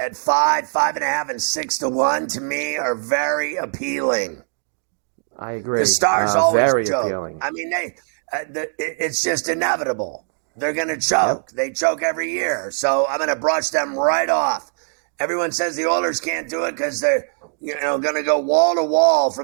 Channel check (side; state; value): left; silent; digital silence